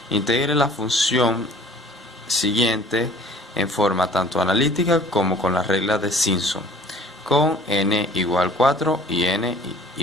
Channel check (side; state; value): both; normal; correlation 0.51